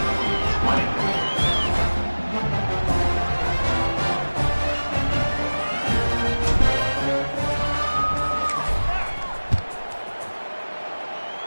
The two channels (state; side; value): inverted; both; correlation -1.00